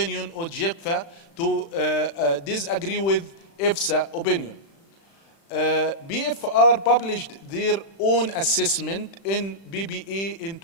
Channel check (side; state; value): right; late; 36 ms